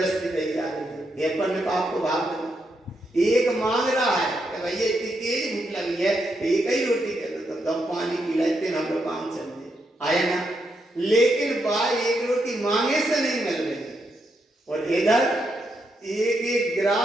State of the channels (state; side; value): normal; both; correlation 0.81